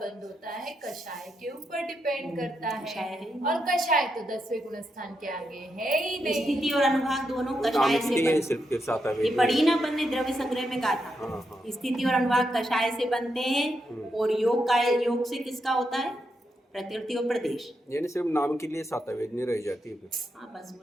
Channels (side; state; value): both; normal; correlation 0.83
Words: होता है कषाय के ऊपर डिपेंड करता कषाय है। है। और कषाय तो 10वें गुणस्थान के आगे है ही नहीं। स्थिति और अनुभाग दोनों कषाय नामिक से है बनते। सिर्फ के सातवें ये वेदनी। पढ़ी ना अपन ने द्रव्य संग्रह में कहा था। हाँ। स्थिति और अनुभाग कषाय से बनते हैं। और योग से किसका होता है? प्रकृति और प्रदेश। यानी सिर्फ नाम के लिए सातवें वेदनी रह जाती है फिर। हाँ, बस